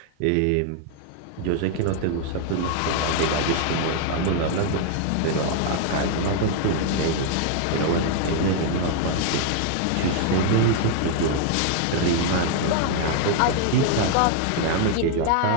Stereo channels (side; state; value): both; different; correlation 0.00